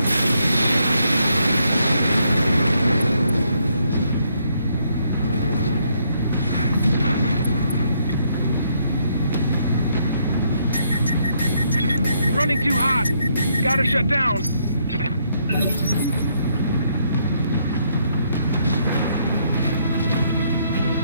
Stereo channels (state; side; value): inverted; both; correlation -0.73